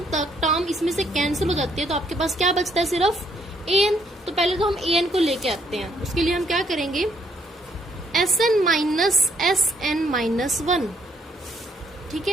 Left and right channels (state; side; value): normal; both; correlation 0.70